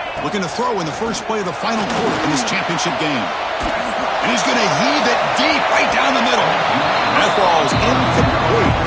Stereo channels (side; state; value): both; identical; correlation 1.00